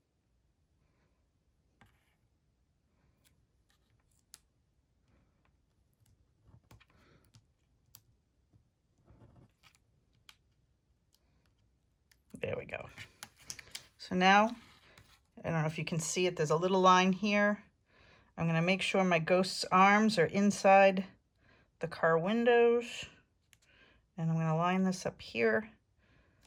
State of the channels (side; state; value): both; identical; correlation 1.00